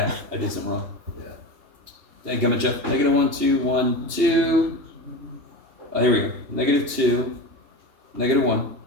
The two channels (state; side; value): late; left; 3.0 ms